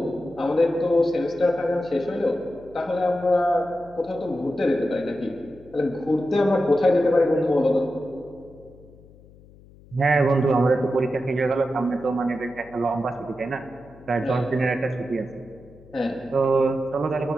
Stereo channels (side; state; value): left; noise; hum, 24 dB below the sound